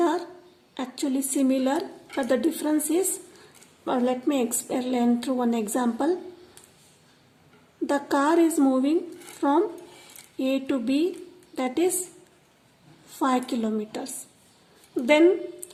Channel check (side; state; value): both; identical; correlation 1.00